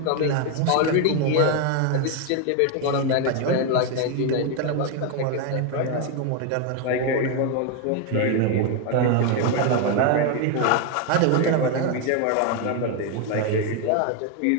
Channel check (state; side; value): different; both; correlation 0.01